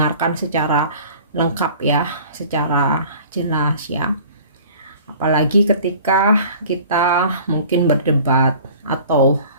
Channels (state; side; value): inverted; both; correlation -0.47